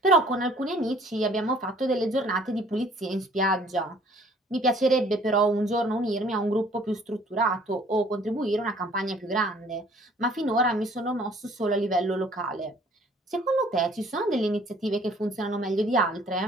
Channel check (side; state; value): both; normal; correlation 0.56